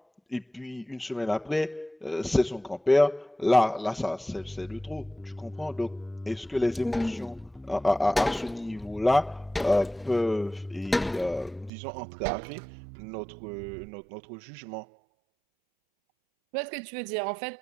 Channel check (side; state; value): left; drops out; at 11.7 s